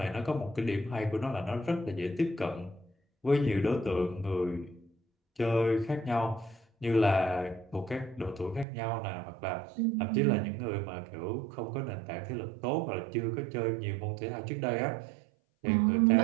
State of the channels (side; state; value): left; drops out; at 8.7 s